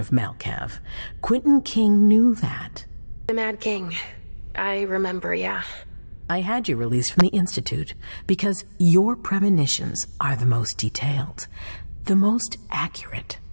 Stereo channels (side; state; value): both; inverted; correlation -1.00